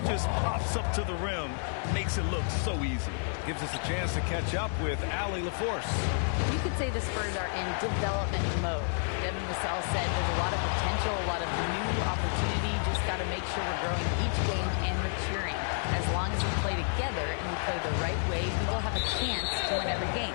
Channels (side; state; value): right; silent; 58 dB below the other